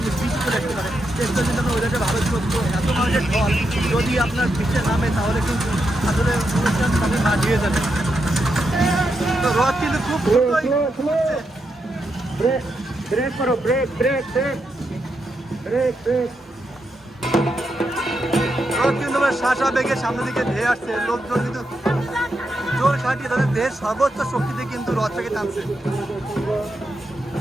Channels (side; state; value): both; normal; correlation 0.84